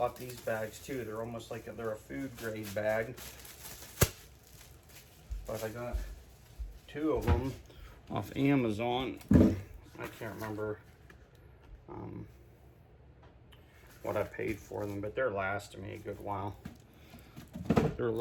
these bags too. They're almost like they're a food grade bag. But I got 2 of them off Amazon. I can't remember what I paid for them, but they're lasting me a good while. They're a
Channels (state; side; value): identical; both; correlation 1.00